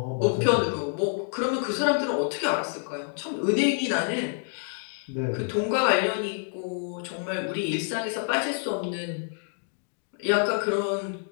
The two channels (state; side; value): silent; right; 60 dB below the other